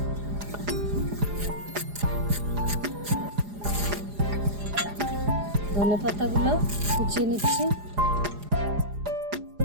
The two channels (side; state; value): left; late; 4.9 ms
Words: ধনে পাতাগুলো কুচিয়ে নিচ্ছি,